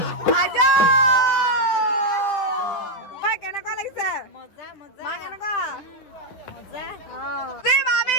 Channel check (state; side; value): late; right; 10 ms